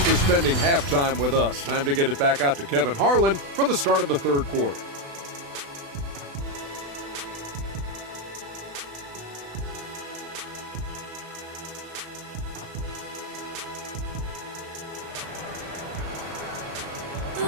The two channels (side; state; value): left; late; 36 ms